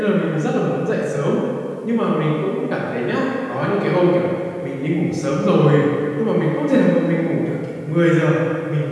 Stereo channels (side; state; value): both; identical; correlation 1.00